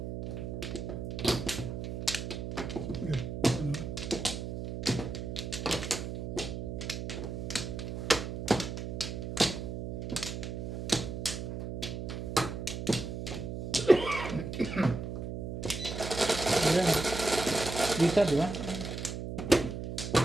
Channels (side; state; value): right; noise; hum, 5 dB below the sound